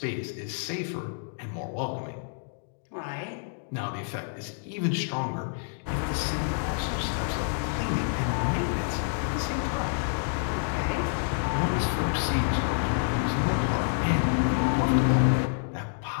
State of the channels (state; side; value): silent; right; digital silence